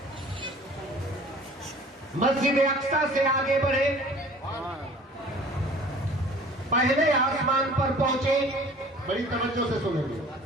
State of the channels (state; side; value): normal; both; correlation 0.48